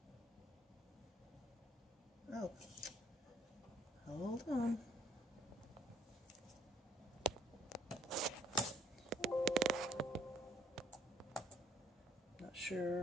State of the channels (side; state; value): both; normal; correlation 0.61